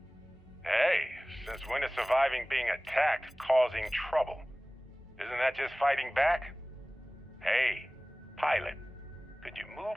Hey, since when is surviving being attacked causing trouble? Isn't that just fighting back? Hey, pilot, could you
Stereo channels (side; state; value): both; normal; correlation 0.98